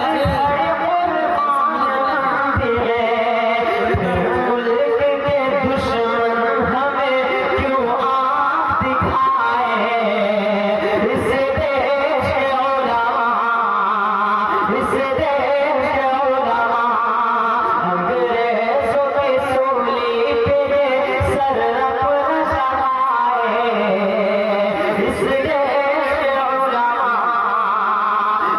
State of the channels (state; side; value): identical; both; correlation 1.00